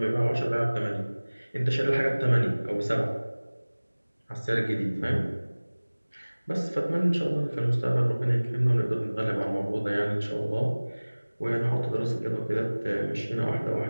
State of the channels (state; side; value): inverted; both; correlation -1.00